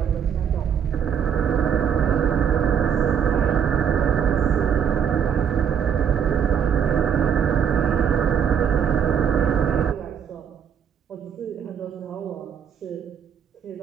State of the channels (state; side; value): quieter; left; 8.1 dB